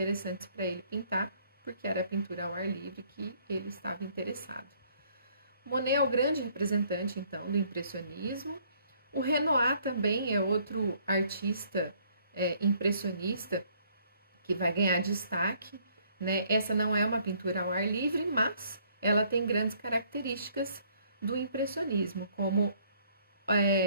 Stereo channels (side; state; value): both; inverted; correlation -0.63